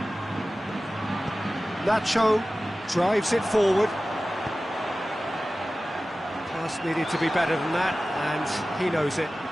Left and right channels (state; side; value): normal; both; correlation 0.96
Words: Nacho drives it forward. Pass needed to be better than that, and he knows it.